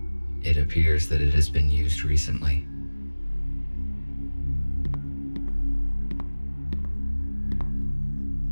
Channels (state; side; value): inverted; both; correlation -1.00